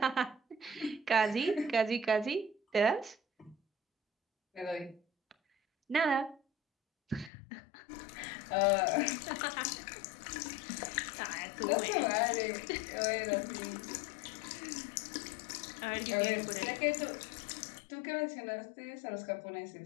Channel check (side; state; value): right; drops out; at 7.3 s